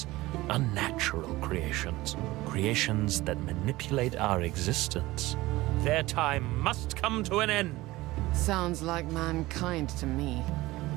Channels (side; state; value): left; quieter; 18.9 dB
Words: Unnatural creations. Creations that manipulate our existence. Their time must come to an end. Sounds like mankind to me.